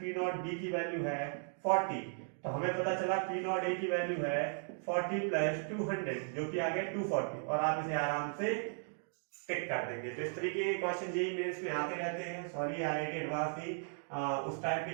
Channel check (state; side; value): silent; left; 53 dB below the other